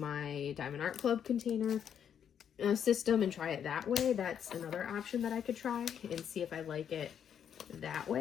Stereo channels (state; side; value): quieter; right; 8.6 dB